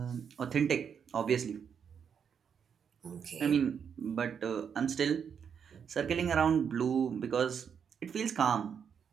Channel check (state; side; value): quieter; left; 7.3 dB